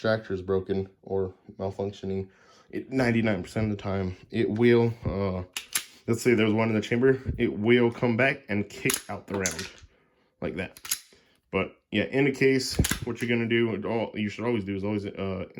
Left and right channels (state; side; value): identical; both; correlation 1.00